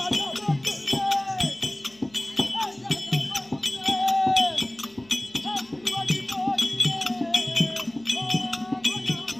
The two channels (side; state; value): left; noise; hum, 30 dB below the sound